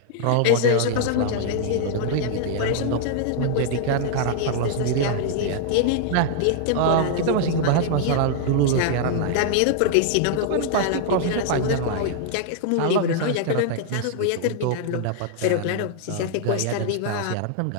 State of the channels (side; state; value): both; different; correlation -0.01